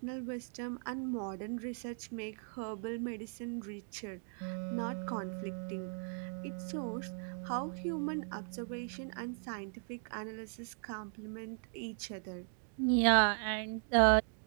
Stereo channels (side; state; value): left; silent; 52 dB below the other